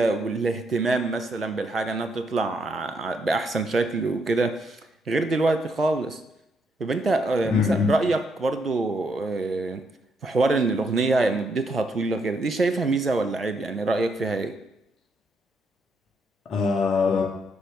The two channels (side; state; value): both; normal; correlation 0.75